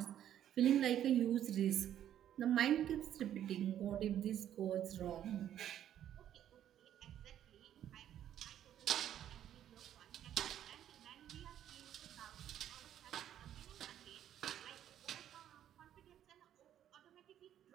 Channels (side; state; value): left; quieter; 10.8 dB